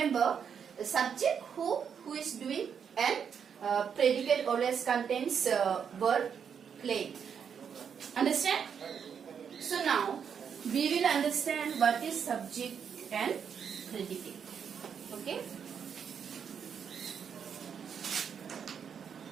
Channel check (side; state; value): left; quieter; 7.3 dB